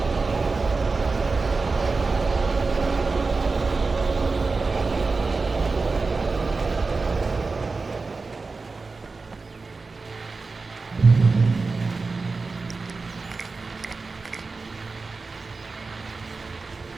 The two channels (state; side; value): quieter; left; 4.0 dB